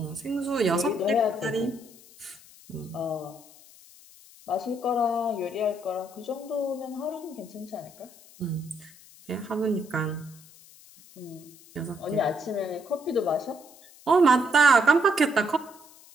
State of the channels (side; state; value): left; noise; hiss, 23 dB below the sound